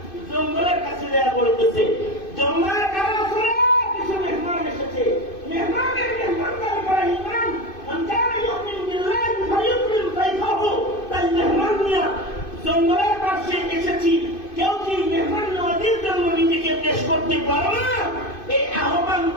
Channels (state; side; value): late; right; 2.5 ms